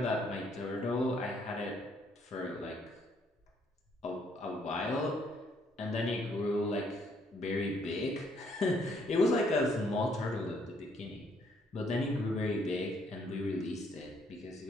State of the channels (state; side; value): normal; both; correlation 0.68